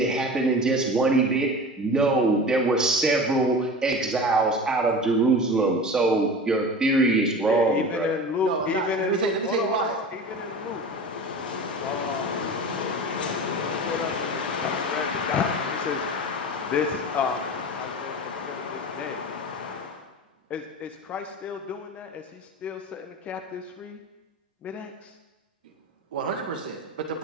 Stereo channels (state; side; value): normal; both; correlation 0.33